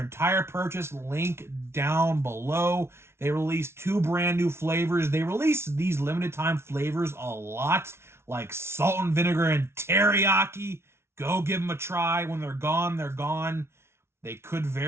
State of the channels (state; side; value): late; left; 0.12 ms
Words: purchase. Link down below. They released 2 brand new flavors. They release these limited time flavors a lot, like salt and vinegar and teriyaki. Go give them a try. When they're gone, they're gone. They could